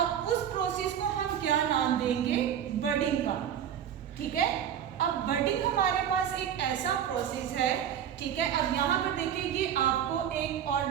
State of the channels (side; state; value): left; quieter; 9.4 dB